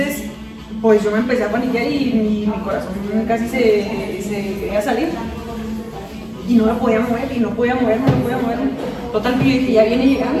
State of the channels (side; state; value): both; identical; correlation 1.00